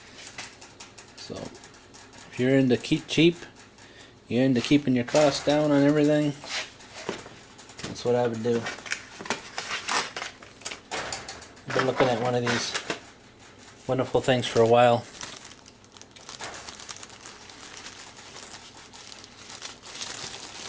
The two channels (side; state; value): both; identical; correlation 1.00